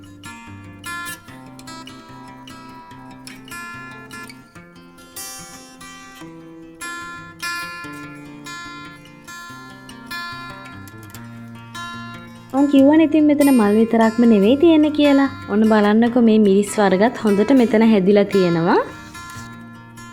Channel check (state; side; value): identical; both; correlation 1.00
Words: කිව්වනේ ඉතින් මෙතන මල් විතරක්ම නෙවෙයි තියෙන්නේ කියලා. ඔන්න බලන්නකෝ මේ මිරිස් වර්ගත් හොඳට මෙතන හැදිලා තියෙනවා.